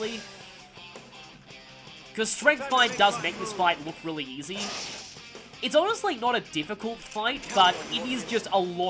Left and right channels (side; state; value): both; identical; correlation 1.00